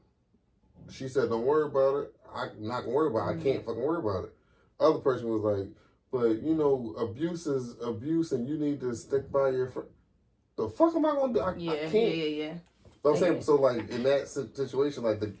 she said, don't worry about it. I'm not going to worry about it. I can't fucking worry about it. Other person was like, but, abuse is abuse and you need to stick by your friend. The fuck am I going to do? I can't. Yeah. But I'm saying, so like, in that situation, like, the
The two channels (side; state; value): both; identical; correlation 1.00